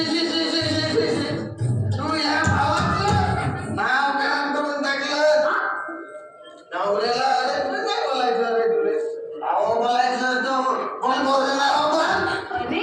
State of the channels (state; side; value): identical; both; correlation 1.00